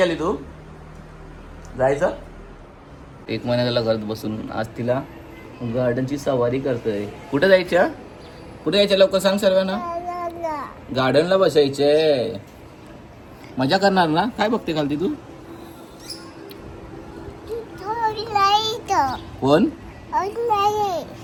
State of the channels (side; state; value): both; identical; correlation 1.00